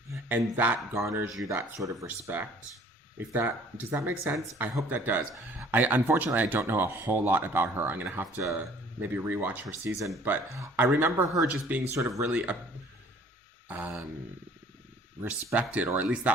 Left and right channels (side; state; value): both; normal; correlation 0.54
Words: And that garners you that sort of respect. Does that make sense? I hope that does. Unfortunately, I don't know a whole lot about her. I'm going to have to maybe rewatch her season. But I remember her just being sort of really respected, or at least